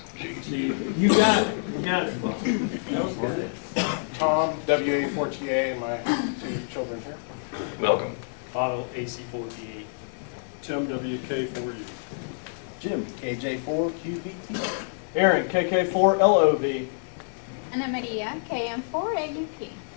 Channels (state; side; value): silent; right; digital silence